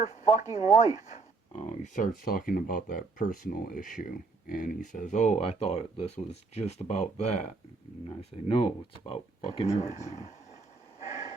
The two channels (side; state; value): left; quieter; 4.0 dB